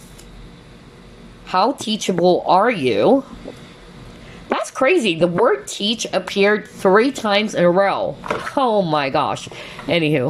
How teachable are you? That's crazy. The word teach appeared 3 times in a row. Oh my gosh.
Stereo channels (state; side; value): identical; both; correlation 1.00